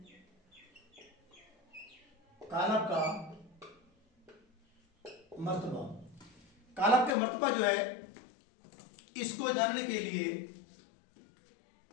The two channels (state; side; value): drops out; right; at 7.2 s